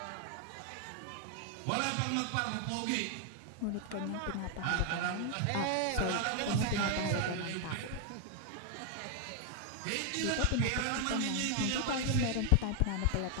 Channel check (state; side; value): different; both; correlation 0.00